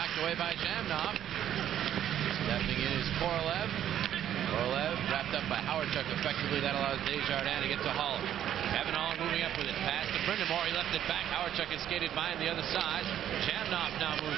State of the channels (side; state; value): left; quieter; 10.8 dB